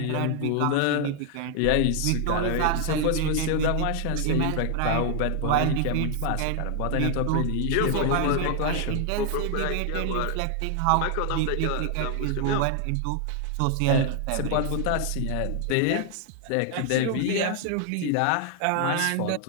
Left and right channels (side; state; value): both; different; correlation 0.00